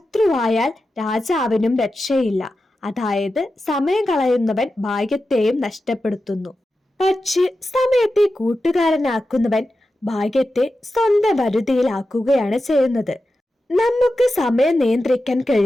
രാജാവിനും രക്ഷയില്ല. അതായത് സമയം കളയുന്നവൻ ഭാഗ്യത്തെയും നഷ്ടപ്പെടുത്തുന്നു. പക്ഷേ സമയത്തെ കൂട്ടുകാരനാക്കുന്നവൻ ഭാഗ്യത്തെ സ്വന്തം വരുതിയിലാക്കുകയാണ് ചെയ്യുന്നത്. നമുക്ക് സമയം നിയന്ത്രിക്കാൻ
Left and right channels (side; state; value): both; normal; correlation 0.91